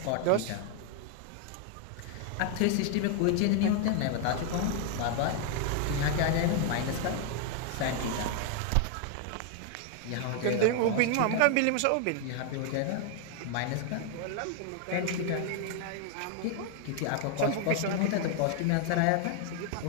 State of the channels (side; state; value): both; different; correlation 0.00